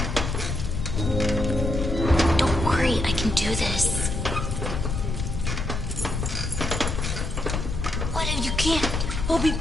Don't worry, I can do this. What if you can't? I'll be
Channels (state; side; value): noise; left; rumble, 2 dB below the sound